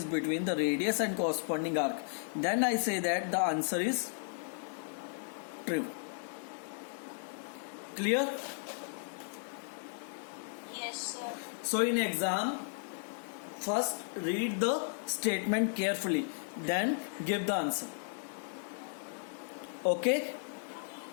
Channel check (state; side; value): silent; right; 54 dB below the other